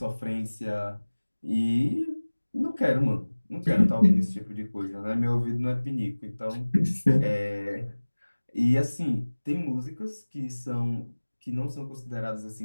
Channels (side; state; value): both; inverted; correlation -1.00